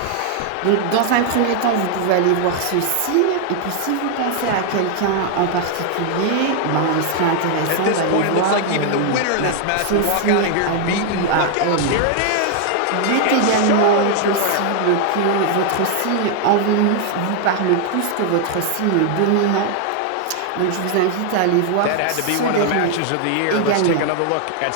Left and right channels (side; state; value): both; different; correlation 0.00